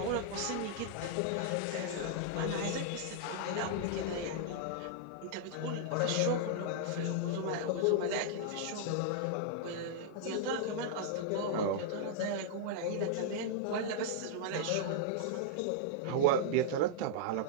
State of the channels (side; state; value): both; different; correlation -0.01